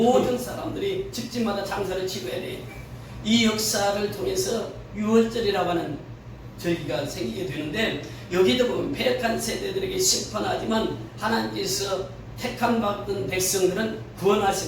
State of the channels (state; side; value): identical; both; correlation 1.00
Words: 사람들이 집집마다 장사를 치러야 돼요. 이 역사를 통해서 유월절이라고 하는 절기가 생기게 되는데, 여기도 보면 패역한 세대들에게 심판하지만 하나님께서 택함 받은 백성들은